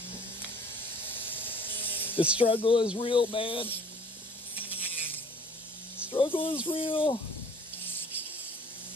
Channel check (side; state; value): both; normal; correlation 0.53